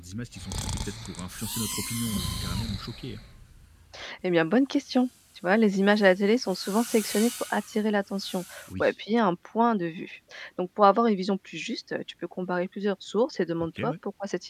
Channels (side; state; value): both; identical; correlation 1.00